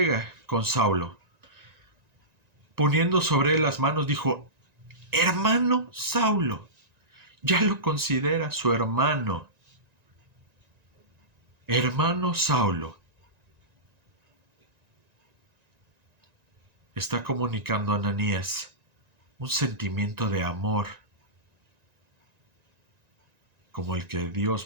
con Saulo. Poniendo sobre él las manos, dijo, hermano Saulo, ya lo considera su hermano. Hermano Saulo. Está comunicando a Ananías un sentimiento de amor como el que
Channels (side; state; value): left; late; 1.9 ms